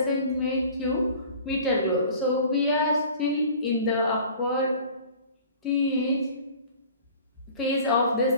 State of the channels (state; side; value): inverted; both; correlation -0.45